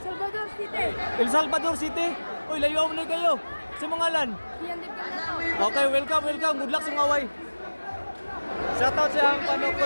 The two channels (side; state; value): both; inverted; correlation -1.00